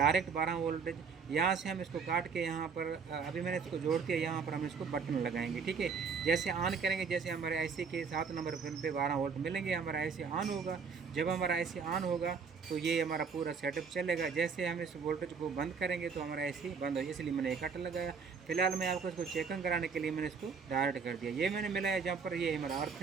12 वोल्टेज, यहाँ से हम इसको काट के यहाँ पर अभी मैंने इसको जोड़ के यहाँ पर हम इसको बटन लगाएंगे, ठीक है। जैसे ऑन करेंगे, जैसे हमारे IC के 7 नंबर पिन पे 12 वोल्ट मिलेंगे, हमारा IC ऑन होगा। जब हमारा IC ऑन होगा तो ये हमारा पूरा सेटअप चलेगा। जैसे हम इस वोल्टेज को बंद करेंगे तो हमारा IC बंद हो, इसलिए मैंने एक कट लगाया। फिलहाल मैं आपको इसको चेकिंग कराने के लिए मैंने इसको डायरेक्ट कर दिया। ये मैंने मिलाया जहाँ पर, ये हमारा अर्थ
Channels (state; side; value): quieter; left; 5.6 dB